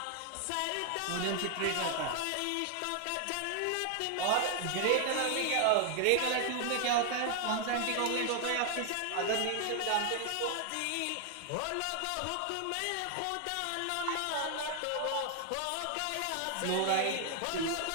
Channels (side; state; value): both; different; correlation 0.00